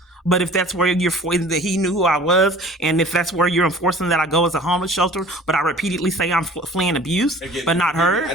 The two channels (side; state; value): both; normal; correlation 0.46